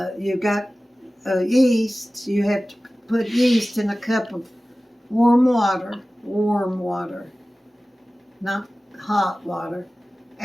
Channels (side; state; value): both; normal; correlation 0.97